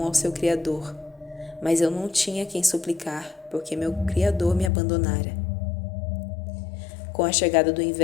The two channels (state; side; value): drops out; right; at 4.7 s